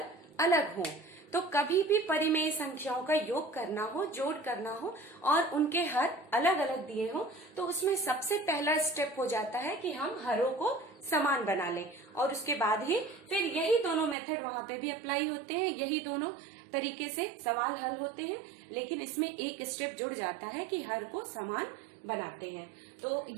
अलग हो। तो कभी भी परिमेय संख्याओं का योग करना हो, जोड़ करना हो और उनके हर अलग अलग दिए हो, तो उसमें सबसे पहला स्टेप हो जाता है कि हम हरों को समान बना लें, और उसके बाद ही फिर यही दोनों मेथड वहां पे भी अप्लाई होते हैं, यही दोनों तरीके से सवाल हल होते हैं। लेकिन इसमें एक स्टेप जुड़ जाता है कि हर को समान बनाते हैं। तो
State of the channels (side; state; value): left; drops out; at 14.2 s